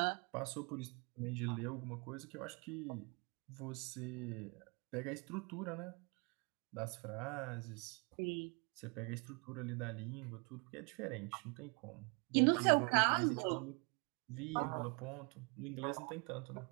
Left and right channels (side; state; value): left; quieter; 33.4 dB